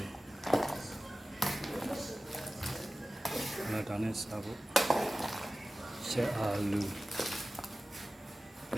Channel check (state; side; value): normal; both; correlation 0.95